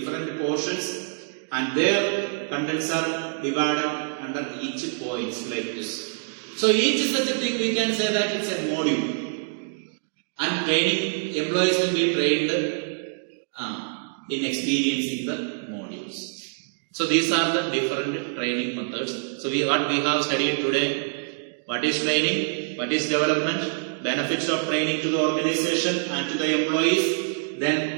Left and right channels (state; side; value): silent; left; digital silence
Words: portions. And their contents are divided under each points like this. So each such a thing we can say that it's a module. And training, employees will be trained in experiencing the modules. So these are the different training methods. So what we have studied today, what is training, what is development, benefits of training to the organization and to the employees,